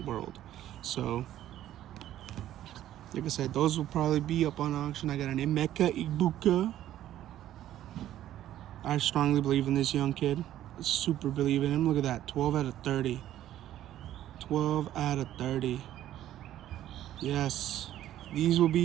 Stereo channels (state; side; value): quieter; left; 12.6 dB